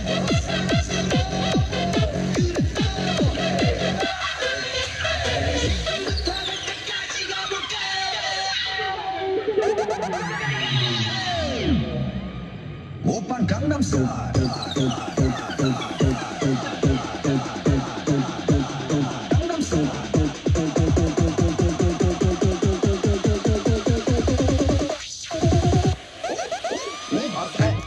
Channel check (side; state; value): both; identical; correlation 1.00